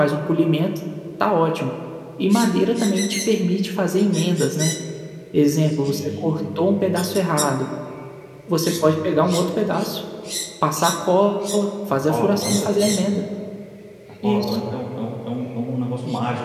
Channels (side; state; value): both; identical; correlation 1.00